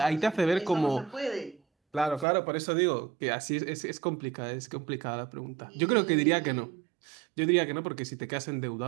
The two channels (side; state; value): left; drops out; at 2.2 s